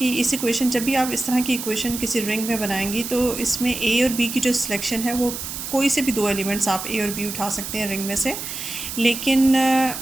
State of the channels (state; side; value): noise; right; hiss, 7 dB below the sound